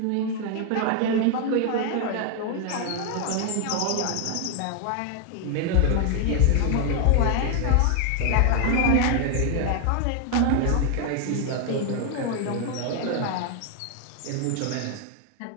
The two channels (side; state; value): both; different; correlation 0.00